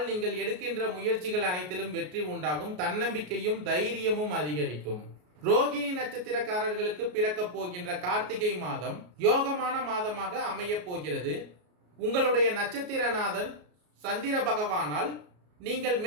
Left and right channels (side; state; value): left; late; 33 ms